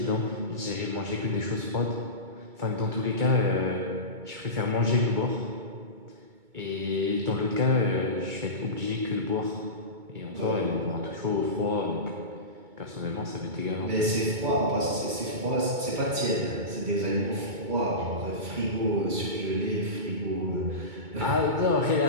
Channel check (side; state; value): left; late; 2.2 ms